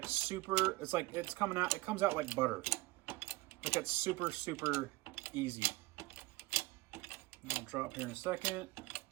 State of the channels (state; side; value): quieter; left; 20.6 dB